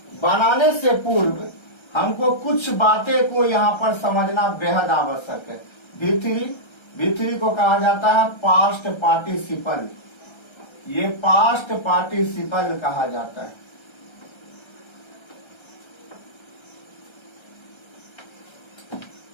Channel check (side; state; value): right; late; 1.3 ms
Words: बनाने से पूर्व हमको कुछ बातें को यहाँ पर समझना बेहद आवश्यक है। V3 को कहा जाता है पास्ट पार्टिसिपल, ये पास्ट पार्टिसिपल कहा जाता है।